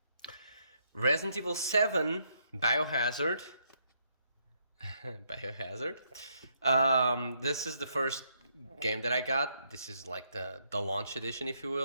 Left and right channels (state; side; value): inverted; both; correlation -0.75